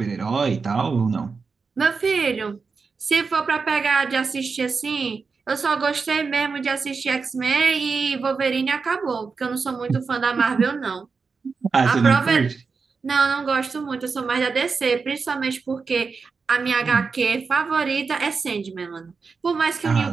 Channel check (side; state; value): left; quieter; 4.9 dB